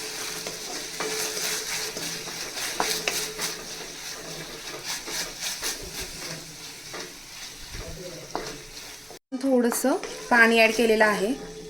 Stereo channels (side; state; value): both; identical; correlation 1.00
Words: थोडंसं पाणी ॲड केलेलं आहे.